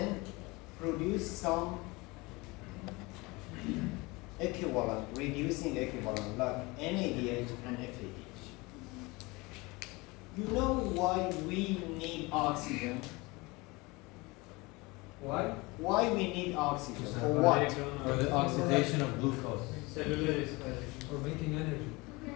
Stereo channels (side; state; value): right; quieter; 24.3 dB